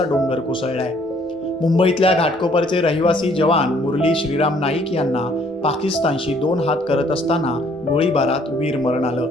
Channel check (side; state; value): both; normal; correlation 0.62